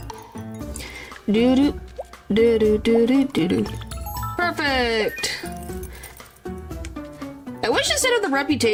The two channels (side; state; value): both; identical; correlation 1.00